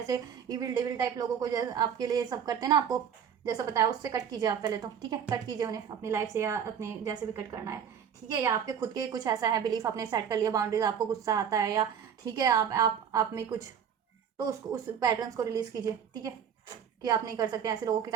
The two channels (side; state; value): left; quieter; 8.0 dB